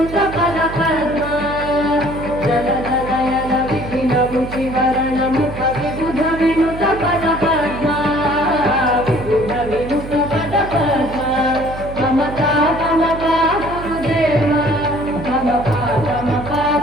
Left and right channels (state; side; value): noise; right; hum, 11 dB below the sound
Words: पदपद्मा जनजनयन विधिन मुखिहरण मुख विबुध विनुत पदपद्मा विबुध विनुत पदपद्मा ममता ममता गुरुदेव ममता ममता